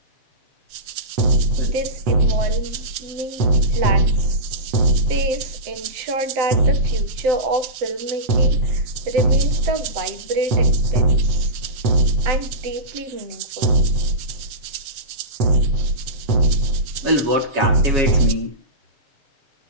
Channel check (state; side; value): late; left; 7.8 ms